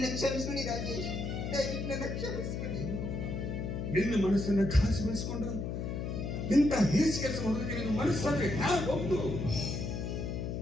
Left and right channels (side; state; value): left; noise; hum, 3 dB below the sound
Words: ಕ್ಷಮಿಸ್ಬಿಡಿ ರಾಜೇಶ್, ದಯವಿಟ್ಟು ನನ್ನ ಕ್ಷಮಿಸ್ಬಿಡಿ. ನಿನ್ನ ಮನಸ್ಸನ್ನ ಘಾಸಿಗೊಳಿಸಿಕೊಂಡು ಇಂಥ ಹೇಸಿ ಕೆಲಸ ಮಾಡೋದಕ್ಕೆ ನಿನ್ನ ಮನಸ್ಸಾದ್ರೆ ಒಂದು